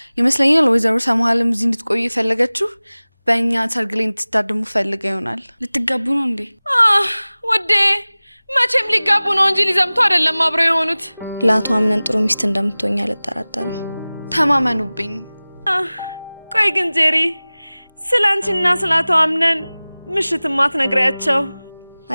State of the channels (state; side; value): inverted; both; correlation -0.99